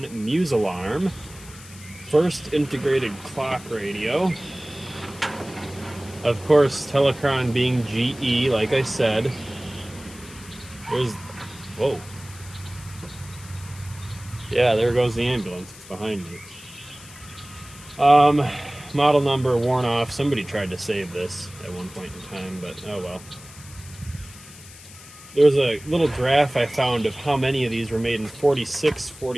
Musalarm. First integrated clock radio. Of course, Telecron being GE, like I said. There's... Whoa. Yeah, there goes the ambulance. It's behind me. Model number worn off. Somebody tried to save this at one point in time, but oh well. There was a little graph I found of how many of these were made in 46,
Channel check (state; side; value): noise; left; hiss, 18 dB below the sound